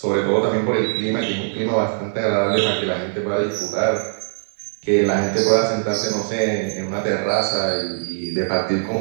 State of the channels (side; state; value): left; silent; 62 dB below the other